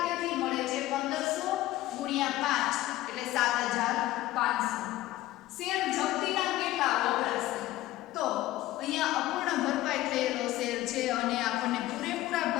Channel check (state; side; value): quieter; right; 16.0 dB